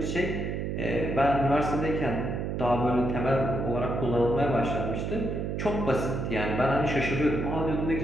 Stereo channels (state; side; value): noise; right; hum, 2 dB below the sound